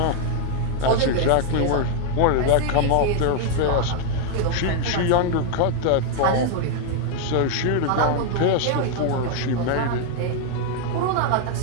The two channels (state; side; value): different; both; correlation 0.00